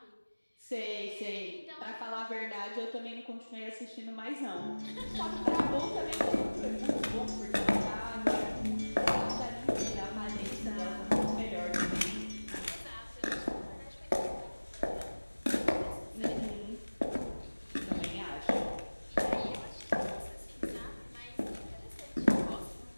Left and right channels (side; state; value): both; inverted; correlation -1.00